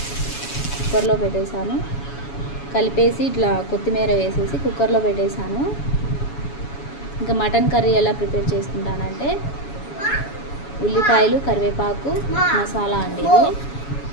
కుక్కర్లో పెట్టేశాను. కలిపేసి ఇట్లా కొత్తిమీర వేసేసి కుక్కర్లో పెట్టేశాను. ఇంకా మటన్ కర్రీ ఎలా ప్రిపేర్ చేసుకుంటానంటే ఉల్లిపాయలు, కరివేపాకు, మసాలా అండి, ఇది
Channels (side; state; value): right; late; 7.1 ms